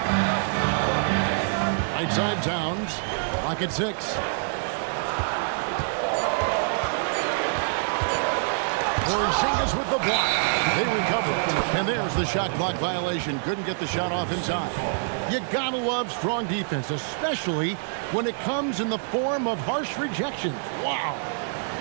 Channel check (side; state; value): left; silent; 61 dB below the other